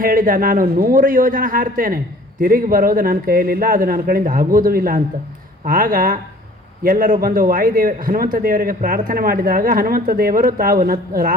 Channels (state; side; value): normal; both; correlation 0.51